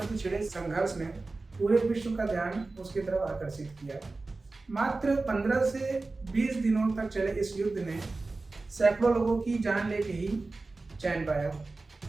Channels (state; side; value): quieter; left; 3.5 dB